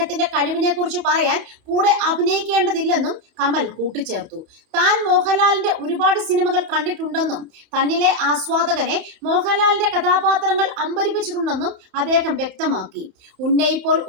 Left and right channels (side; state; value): left; late; 31 ms